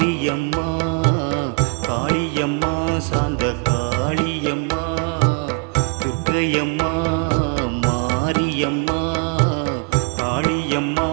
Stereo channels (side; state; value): left; quieter; 33.9 dB